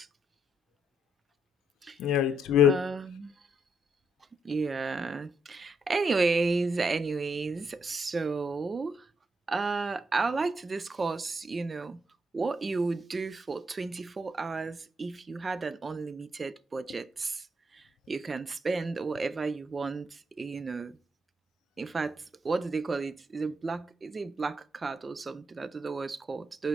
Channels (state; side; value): normal; both; correlation 0.76